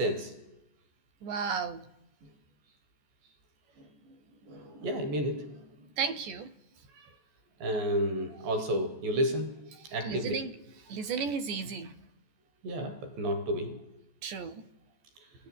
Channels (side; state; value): left; late; 14 ms